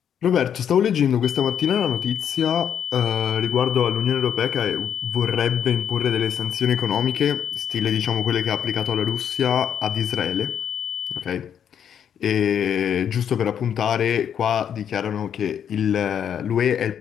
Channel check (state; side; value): quieter; right; 8.7 dB